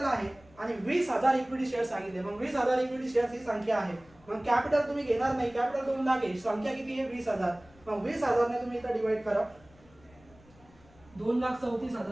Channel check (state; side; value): noise; left; rumble, 27 dB below the sound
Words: आहे आणि 20,000 इक्विटी शेअर सांगितले. मग 20,000 इक्विटी शेअर्स ही संख्या आहे. मग कॅपिटल तुम्ही घेणार नाही, कॅपिटल 2 लाख आहे, संख्या किती आहे 20,000. मग 20,000 ने तुम्ही इथं डिवाइड करा,